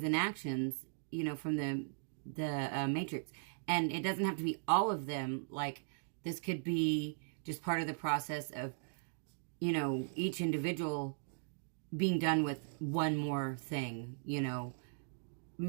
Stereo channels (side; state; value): left; silent; digital silence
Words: and actions, you know, from the matrix. And it doesn't have to be all of them. Like, this could be just part of the process of, you know, each individual being done with one more thing, you know,